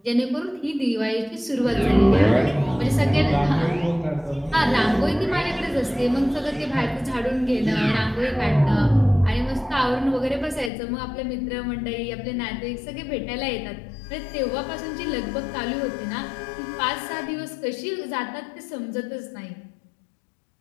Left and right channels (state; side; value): drops out; right; at 10.7 s